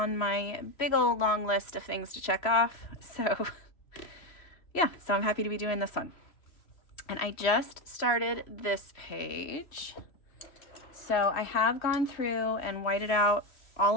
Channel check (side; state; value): right; late; 3.0 ms